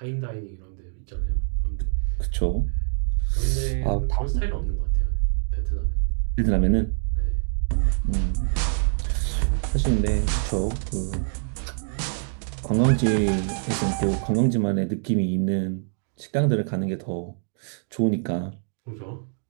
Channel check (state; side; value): silent; left; digital silence